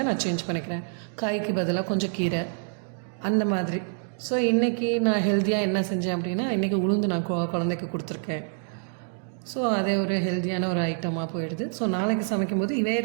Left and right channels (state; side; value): silent; left; 60 dB below the other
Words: நான் சேஞ்ச் பண்ணிக்கிறேன். காய்க்கு பதிலாக கொஞ்சம் கீரை அந்த மாதிரி. ஸோ இன்றைக்கி நான் ஹெல்த்தியாக என்ன செஞ்சேன் அப்படின்னா இன்றைக்கி உளுந்து நான் குழந்தைக்கு கொடுத்துருக்கேன். ஸோ அதே ஒரு ஹெல்த்தியான ஒரு ஐட்டமாக போயிடுது. ஸோ நாளைக்கு சமைக்கும்போது